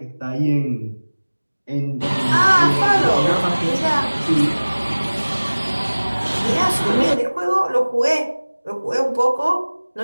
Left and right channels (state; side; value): inverted; both; correlation -1.00